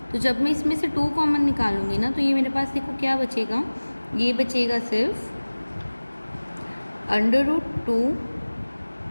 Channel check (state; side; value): inverted; both; correlation -1.00